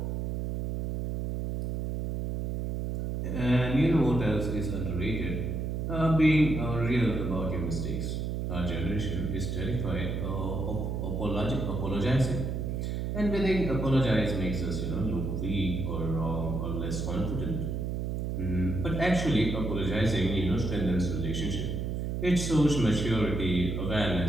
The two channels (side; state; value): right; noise; hum, 2 dB below the sound